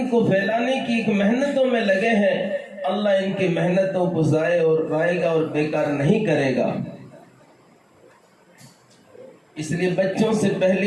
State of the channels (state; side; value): identical; both; correlation 1.00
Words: کو پھیلانے کی ایک محنتوں میں لگے ہیں. اللہ ان کی محنتوں کو ضائع اور رائے گا اور بیکار نہیں کرے گا. اس لیے بچوں سے